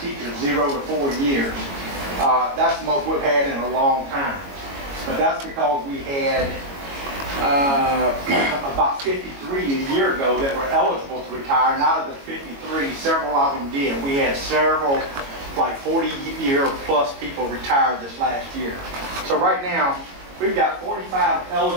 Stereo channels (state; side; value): late; left; 22 ms